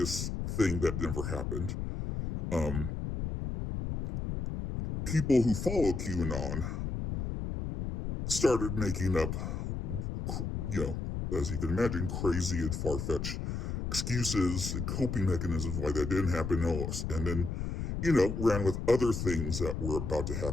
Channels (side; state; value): left; noise; rumble, 3 dB below the sound